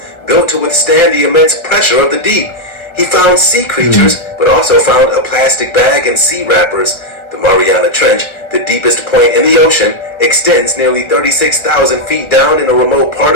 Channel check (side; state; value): right; late; 1.4 ms